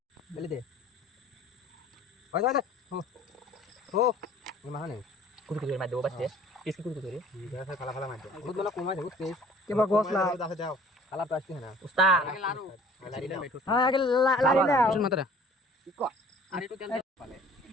বলে দে ওই দাদা ও ও না নেই কুতু কুতু মার দেবো বাচ্চা কিসকি কুতু কুতু রে দেখা খালা খালা মার দে বহুত বলা কমাই দে বুঝছিস কেবা গোসলা দাও খালা তো আসছে না উস্তাদ হ্যাঁ আগে লারি না শুন মাত্রা কি কো আর একটু তেল পালে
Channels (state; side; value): normal; both; correlation 0.51